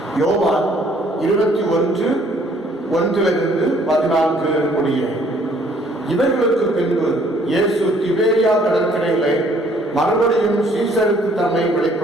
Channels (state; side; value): normal; both; correlation 0.61